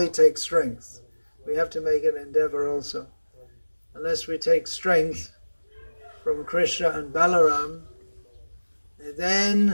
we have to make an endeavor also. Unless we take strength from Krishna and Balarama,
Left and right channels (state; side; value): inverted; both; correlation -1.00